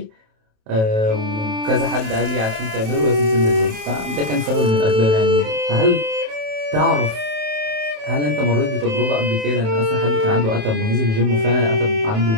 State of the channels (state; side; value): late; left; 27 ms